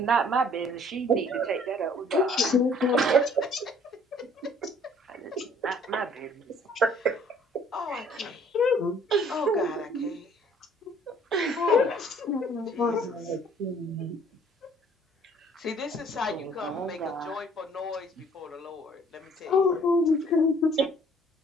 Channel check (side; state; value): both; normal; correlation 0.58